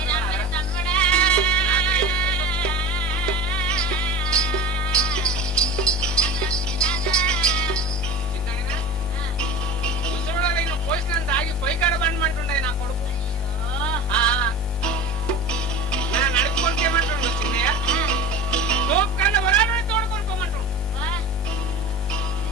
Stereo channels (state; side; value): normal; both; correlation 0.32